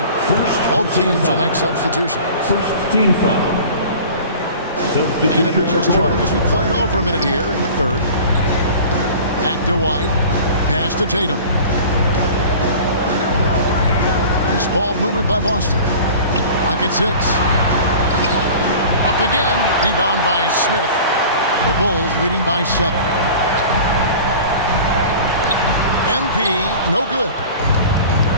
Both teams will make substitution. First team foul. And if you're just joining us, we played over a minute here in the third. Back to White. Pass to Tatum. Nice ball movement by Boston. Clock at 6. Up again. Rebound by Smith. The Bulls leading by 7. MP, no good.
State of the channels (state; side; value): inverted; both; correlation -0.40